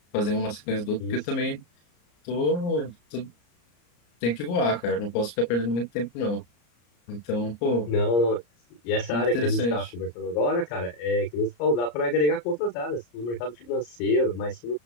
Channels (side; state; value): right; late; 34 ms